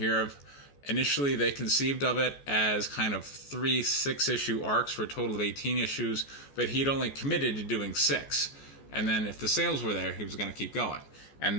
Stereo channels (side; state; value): right; late; 14 ms